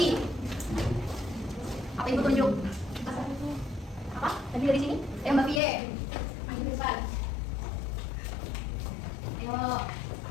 Apa ibu tunjuk? Apa? Tadi dari sini? Ayo Mbak Pie. Maju ke depan. Ayo.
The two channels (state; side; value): drops out; right; at 5.6 s